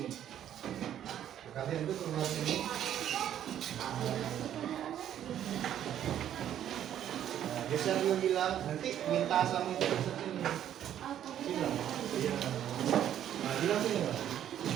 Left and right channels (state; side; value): quieter; left; 10.7 dB